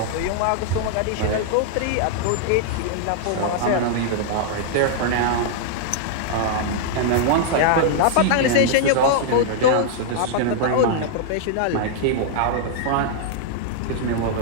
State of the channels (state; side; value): different; both; correlation -0.01